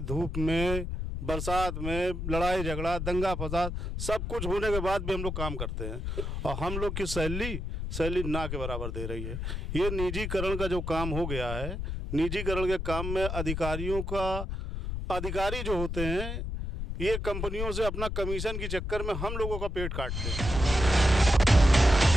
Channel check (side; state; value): left; noise; rumble, 4 dB below the sound